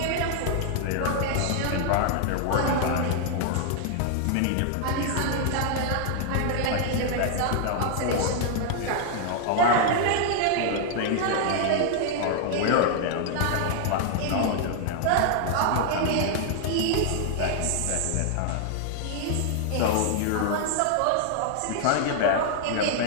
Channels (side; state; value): both; different; correlation 0.00